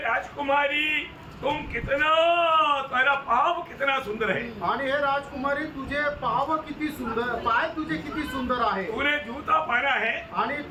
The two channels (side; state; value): both; identical; correlation 1.00